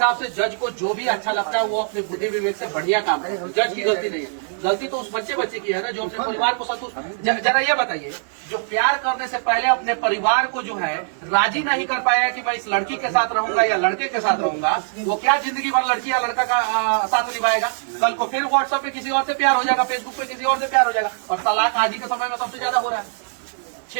से जज को जो भी अच्छा लगता है वो अपने बुद्धि विवेक से बढ़िया काम करे। जज की गलती नहीं है, गलती तो उस बच्चे की है ना, जो अपने परिवार को संतुष्ट। जरा ये बताइए, जो प्यार करने से पहले अपने परिवार को जो है राजी नहीं कर पाया कि मैं इस लड़की के साथ रहूंगा या लड़के के साथ रहूंगा, वो क्या जिंदगी भर लड़की या लड़का का साथ निभाएगा? कल को फिर व्हाट्सएप पे किसी और से प्यार हो जाएगा, फेसबुक पे किसी और से प्यार हो जाएगा। और तलाक आज ही के समय में सबसे ज्यादा हो रहा है।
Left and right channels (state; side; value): silent; left; digital silence